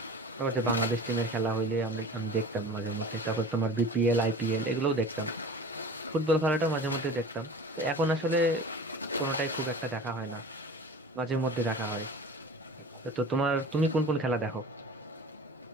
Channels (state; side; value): normal; both; correlation 0.39